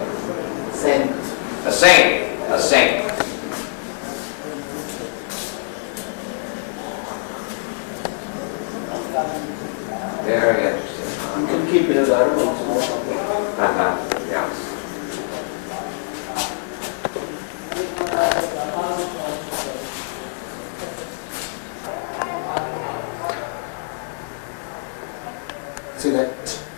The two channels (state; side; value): silent; right; 62 dB below the other